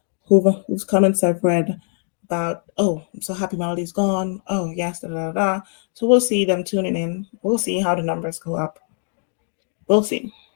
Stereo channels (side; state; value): right; silent; 64 dB below the other